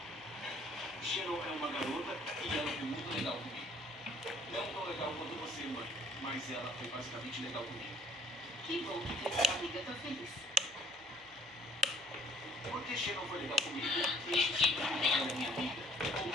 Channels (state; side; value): noise; right; hum, 28 dB below the sound